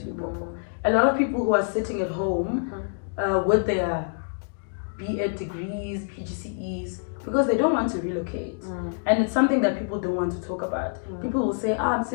Limpopo. A lot of people who are sitting at home with their B.Ed degrees, PGCEs, because they don't want to relocate. And it's something that people don't want to talk about. People will say, I'm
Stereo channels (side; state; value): right; silent; digital silence